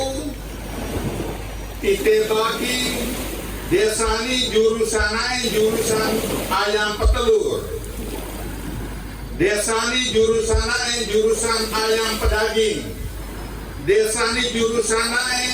titik bagi desa ini jurusan ayam petelur, desa ini jurusan ayam pedaging, desa ini jurusan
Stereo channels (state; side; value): identical; both; correlation 1.00